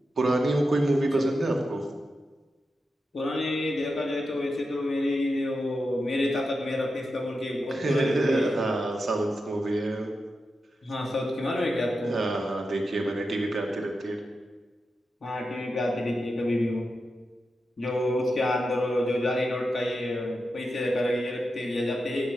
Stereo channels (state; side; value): normal; both; correlation 0.89